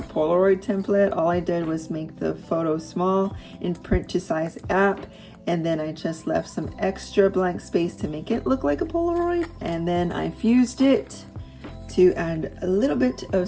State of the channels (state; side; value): identical; both; correlation 1.00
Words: Polaroid template. All I did was make the photo small in print to size app, and then I just left some extra blank space to make it look like a Polaroid, and then I fused it to add a little bit of